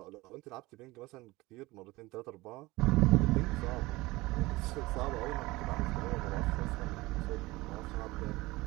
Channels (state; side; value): quieter; left; 20.6 dB